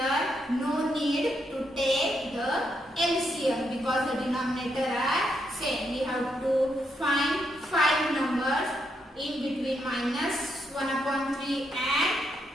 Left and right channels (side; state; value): both; normal; correlation 0.79